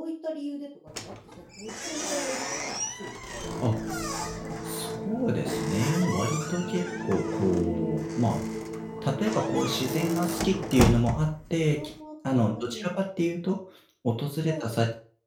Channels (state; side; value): identical; both; correlation 1.00